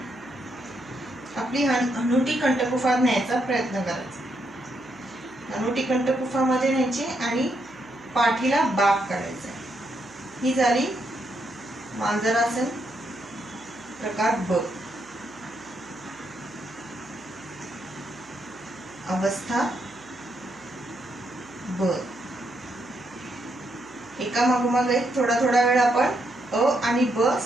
आपली हनुटी कंठकुफात न्यायचा प्रयत्न करायचा. हनुटी कंठकुफामध्ये न्यायची आणि पाठीला बाक करायचा. ही झाली मांजरासन प्रकार ब. अवस्था ब. एका मागोमाग एक थोडा वेळ आपण अ आणि ब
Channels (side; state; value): right; noise; hum, 28 dB below the sound